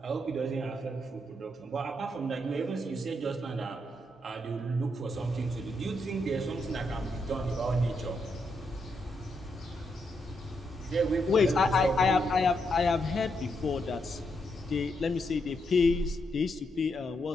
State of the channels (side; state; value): both; normal; correlation 0.80